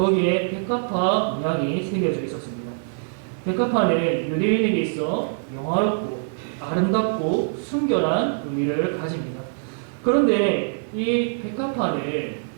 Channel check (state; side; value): silent; left; digital silence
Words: 백합화 문양이 새겨져 있었습니다. 백합화는 유대인에게 있어 영화롭고 아름답고 순결한 의미를 가집니다. 그런데 이 백합화는